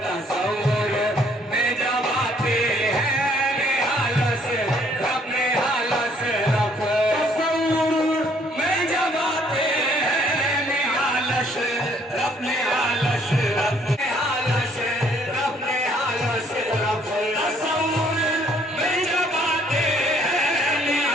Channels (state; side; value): normal; both; correlation 0.63